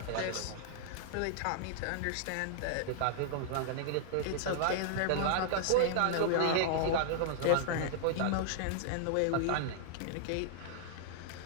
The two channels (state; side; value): different; both; correlation -0.01